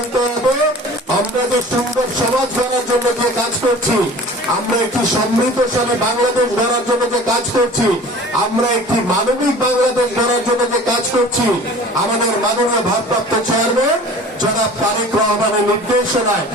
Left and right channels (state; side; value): normal; both; correlation 0.43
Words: হবে। আমরা যে সুন্দর সমাজ গড়ার জন্য যে কাজ করছি, আমরা একটি সমৃদ্ধশালী বাংলাদেশ গড়ার জন্য যে কাজ করছি, আমরা একটি মানবিক বাংলাদেশ গড়ার জন্য যে কাজ করছি, আমাদের মাননীয় ভারপ্রাপ্ত চেয়ারম্যান জনাব তারেক রহমানের নির্দেশনায়